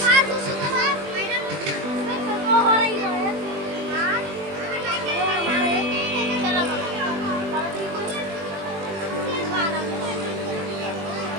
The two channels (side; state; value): left; late; 20 ms